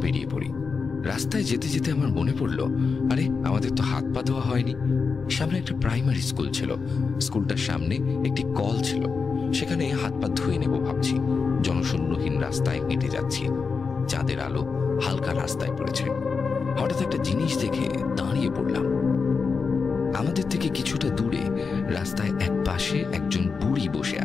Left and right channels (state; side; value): quieter; right; 5.0 dB